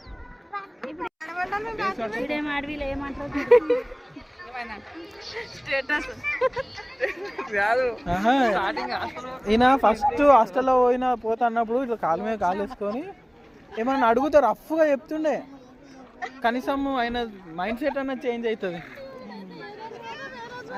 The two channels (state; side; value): identical; both; correlation 1.00